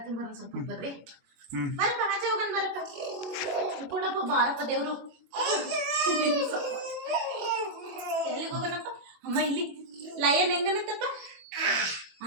ಬರೋಣ ಸ್ವಲ್ಪ ಬರ್ರಿ. ಬರಪ್ಪ ಆಚೆ ಹೋಗೋಣ ಬರಪ್ಪ. ಕೊಡಪ್ಪ ಬಾರಪ್ಪ ದೇವ್ರು. ಎಲ್ಲಿಗೆ ಹೋಗೋಣಪ್ಪ? ಅಮ್ಮ ಇಲ್ಲಿ ಲಯನ್ ಹೆಂಗನತ್ತಪ್ಪ?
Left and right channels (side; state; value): left; late; 22 ms